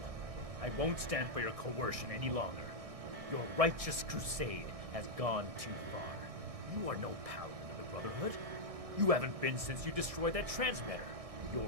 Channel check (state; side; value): late; left; 1.6 ms